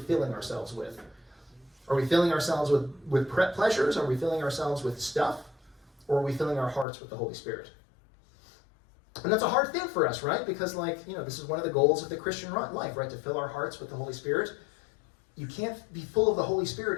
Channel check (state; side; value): drops out; right; at 6.9 s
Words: filling ourselves with? Are we filling ourselves with pleasures? Are we filling ourselves with stuff? Or are we filling our hearts with the Holy Spirit? And that's a hard thing for us, right? Because, this is one of the goals of the Christian life, right? To fill our hearts with the Holy Spirit. You can't be full of the Holy